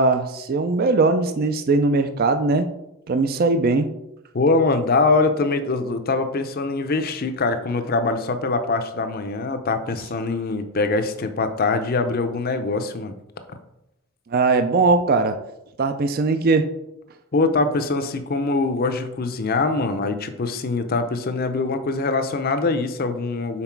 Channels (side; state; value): both; normal; correlation 0.08